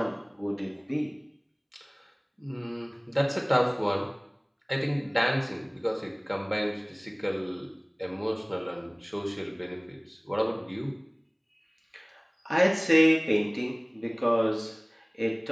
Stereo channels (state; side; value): identical; both; correlation 1.00